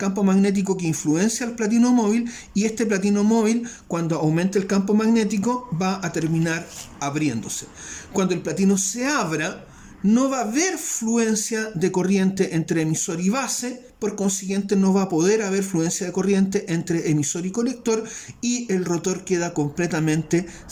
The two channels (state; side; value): identical; both; correlation 1.00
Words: magnético que influencia al platino móvil y este platino móvil, cuando aumente el campo magnético, va a terminar abriéndose. Cuando el platino se abra, no va a haber fluencia de corriente entre emisor y base, por consiguiente no va a poder haber fluencia de corriente entre emisor y colector y el rotor queda completamente